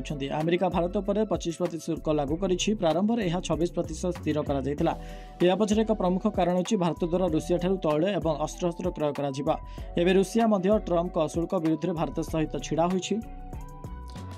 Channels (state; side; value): identical; both; correlation 1.00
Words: अमेरिका भारत पर 25% शुल्क लागू करिछि। प्रारंभ में यह 26% स्थिर करा जायतिला। या पछरे एक प्रमुख कारण अछि भारत द्वारा रूसिया ठारू तैल एवं अस्त्र क्रय करा जिबा। एबे रूसिया मध्य ट्रम्प का शुल्क विरुद्ध में भारत सहित छिड़ा होइछि।